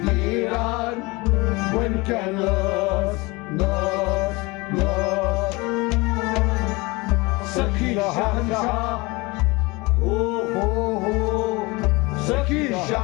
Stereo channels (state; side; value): quieter; right; 24.5 dB